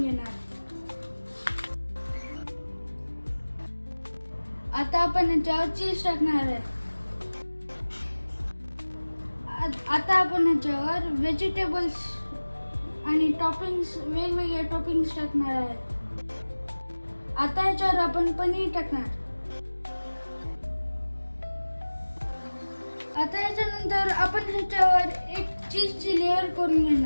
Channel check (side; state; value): both; inverted; correlation -1.00